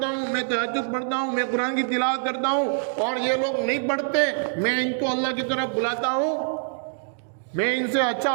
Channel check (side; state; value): left; silent; 62 dB below the other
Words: ہوں، میں تہجد پڑھتا ہوں، میں قرآن کی تلاوت کرتا ہوں اور یہ لوگ نہیں پڑھتے، میں ان کو اللہ کی طرف بلاتا ہوں، میں ان سے اچھا